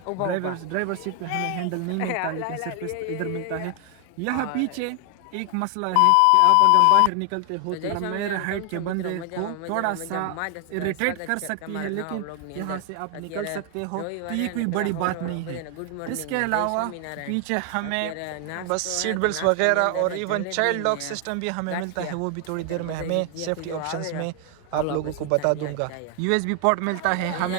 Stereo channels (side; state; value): both; different; correlation 0.00